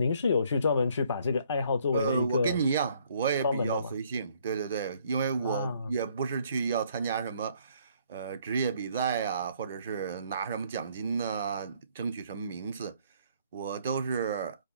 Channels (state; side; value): inverted; both; correlation -0.64